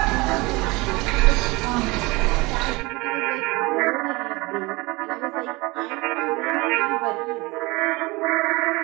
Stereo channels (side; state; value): left; quieter; 24.0 dB